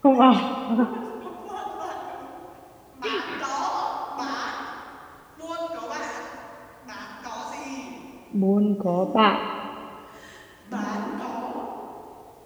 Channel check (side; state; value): both; identical; correlation 1.00